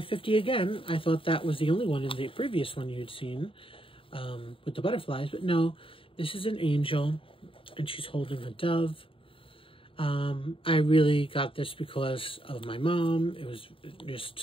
50 again. I thought that was the only one in the previous one you'd seen with the butterflies, but no, this is an angel, and she's holding a dove. I really got this because of my mom. It was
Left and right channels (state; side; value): late; right; 0.26 ms